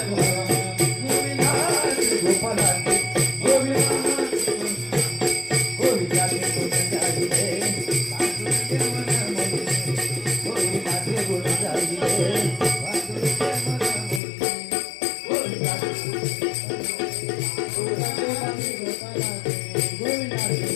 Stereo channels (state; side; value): drops out; right; at 14.2 s